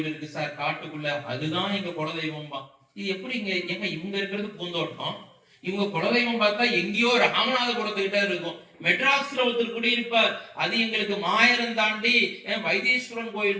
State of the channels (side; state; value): both; identical; correlation 1.00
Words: இருக்கு சார் காட்டுக்குள்ள, அதுதான் எங்க குலதெய்வம்பா. இது எப்படி எங்க இவங்க இருக்கிறது பூந்தோட்டம், இவங்க குலதெய்வம் பார்த்தா எங்கேயோ ராமநாதபுரத்துக்கிட்ட இருக்கும். மெட்ராஸ்ல ஒருத்தர் குடியிருப்பார், அது எங்களுக்கு மாயரம் தாண்டி வைத்தீஸ்வரன்